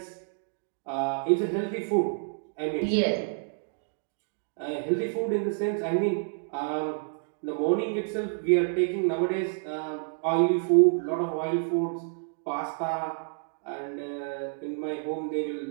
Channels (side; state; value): left; silent; digital silence